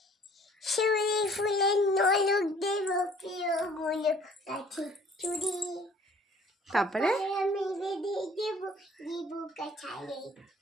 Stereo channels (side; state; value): both; normal; correlation 0.55